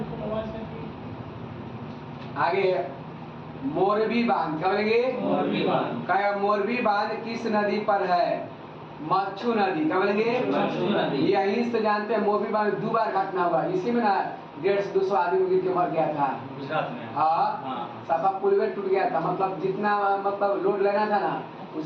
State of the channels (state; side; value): identical; both; correlation 1.00